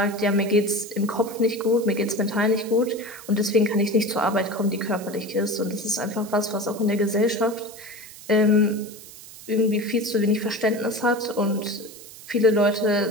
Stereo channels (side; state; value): right; noise; hiss, 17 dB below the sound